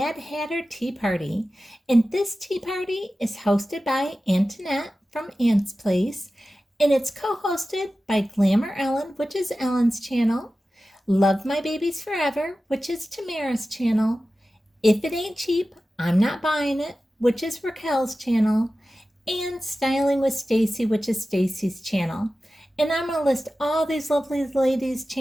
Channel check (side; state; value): both; normal; correlation 0.94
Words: Hatter tea party, and this tea party is hosted by Antoinette from Aunt's Place, and it's co-hosted by Glamour Ellen, which is Ellen's channel, Lovemybabies Forever, which is Tamara's channel, If It Ain't Cheap, I'm Not Buying It, which is Raquel's channel, and Styling with Stacy, which is Stacy's channel. And I'm going to list all these lovely ladies'